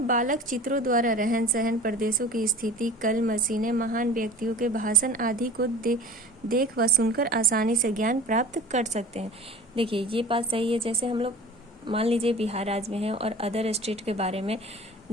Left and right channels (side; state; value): both; normal; correlation 0.41